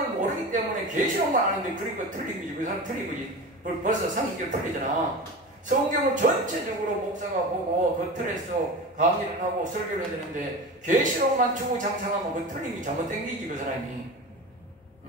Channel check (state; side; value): normal; both; correlation 0.30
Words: 모르기 때문에 계시록만 아는데 그러니까 틀린 거지. 그 사람 틀린 거지. 벌써 상식적으로 틀리잖아. 성경을 전체적으로 목사가 보고 그 틀에서 강의를 하고 설교를 해야 되는데 계시록만 주구장창하면 그 틀린 게 잘못된 게지 그 사람이.